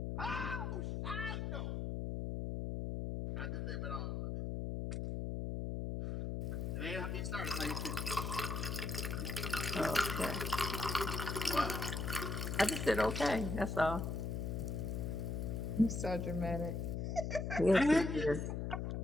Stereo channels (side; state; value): left; noise; hum, 2 dB below the sound